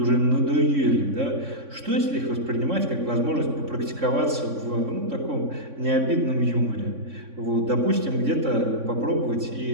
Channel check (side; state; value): left; late; 3.6 ms